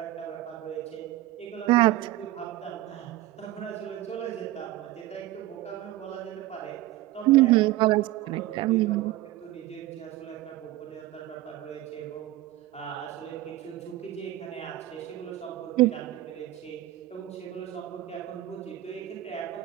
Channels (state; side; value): quieter; left; 15.7 dB